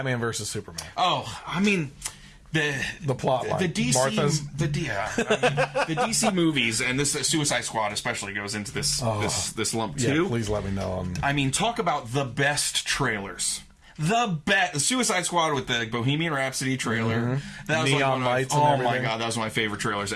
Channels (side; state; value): both; identical; correlation 1.00